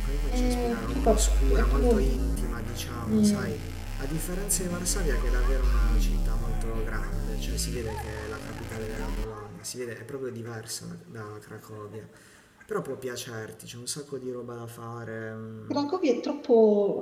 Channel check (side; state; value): both; identical; correlation 1.00